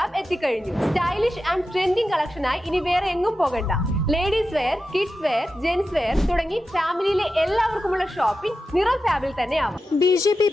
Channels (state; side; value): normal; both; correlation 0.91